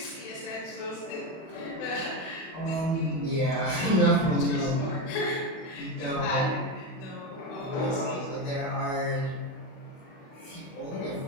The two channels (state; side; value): late; right; 31 ms